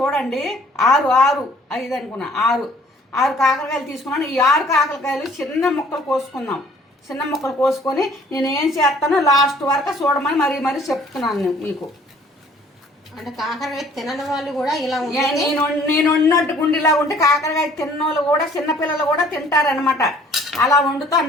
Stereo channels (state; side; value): normal; both; correlation 0.56